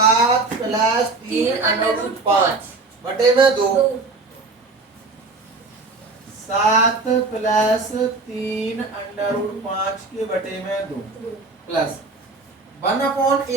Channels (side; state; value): left; quieter; 3.6 dB